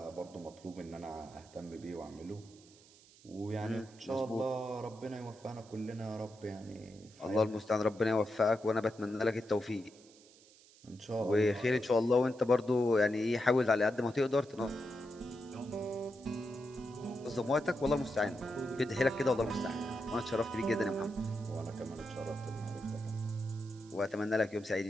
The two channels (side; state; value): right; noise; hiss, 25 dB below the sound